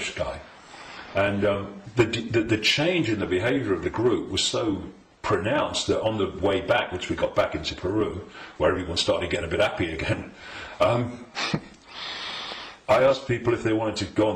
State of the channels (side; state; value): both; identical; correlation 1.00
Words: guy, and the change in the behaviour of the group was so pronounced that on the way back, which we got back into Peru, where everyone started getting a bit happy again, I asked people if they wanted to go on